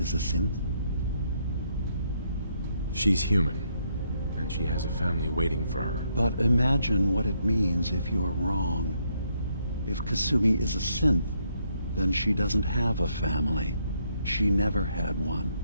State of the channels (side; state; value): both; inverted; correlation -0.74